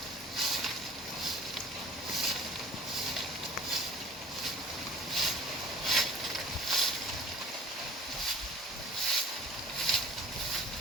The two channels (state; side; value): normal; both; correlation 0.46